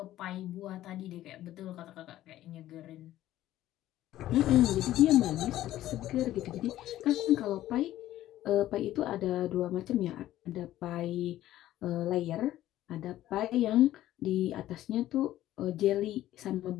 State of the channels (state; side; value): quieter; right; 13.9 dB